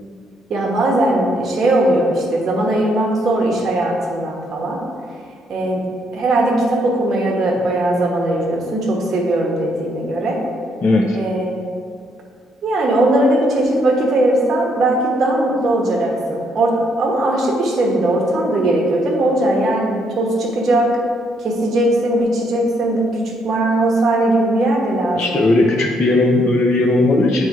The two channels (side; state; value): both; normal; correlation 0.72